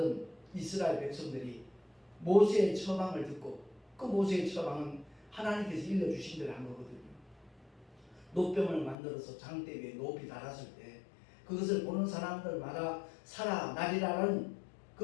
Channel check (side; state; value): right; drops out; at 9.0 s